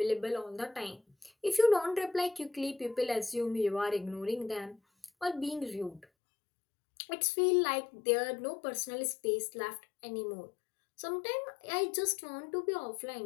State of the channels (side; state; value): right; drops out; at 6.1 s